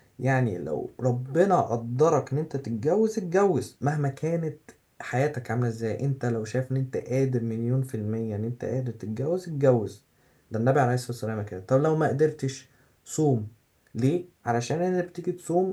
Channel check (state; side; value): identical; both; correlation 1.00